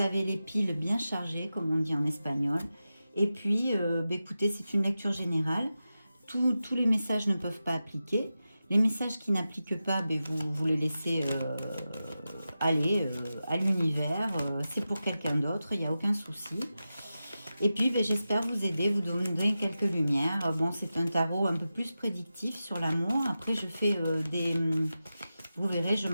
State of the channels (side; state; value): both; inverted; correlation -0.92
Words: les piles bien chargées, comme on dit en espagnol. Et puis, écoutez, c'est une lecture générale. Tous les messages ne peuvent pas appliquer. Les messages qui n'appliquent pas, vous les laissez aller à l'univers. C'est pour quelqu'un d'autre, il n'y a aucun souci. Et puis, j'espère vous aider, vous donner quelques lumières. Bon, c'est un tarot un peu plus prédictif sur l'amour. Après, je fais vous verrez, je